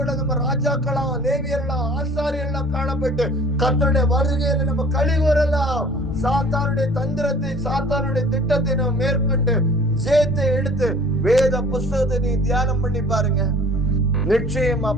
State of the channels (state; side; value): normal; both; correlation 0.48